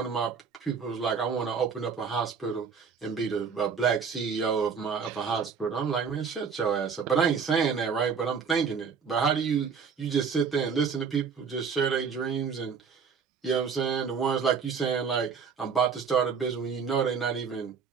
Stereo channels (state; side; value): quieter; left; 6.1 dB